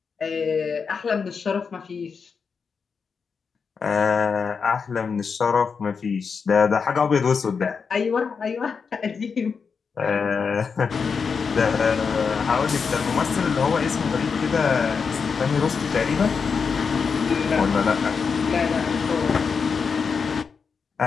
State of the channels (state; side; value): quieter; right; 5.6 dB